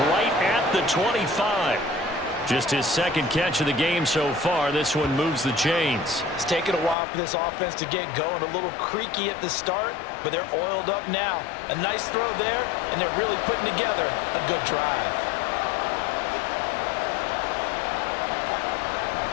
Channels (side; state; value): right; drops out; at 7.0 s